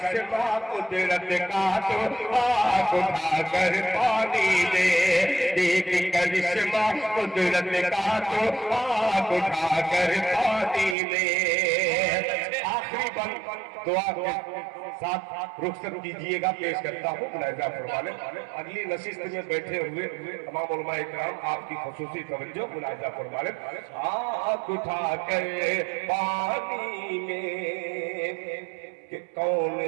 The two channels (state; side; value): drops out; left; at 11.0 s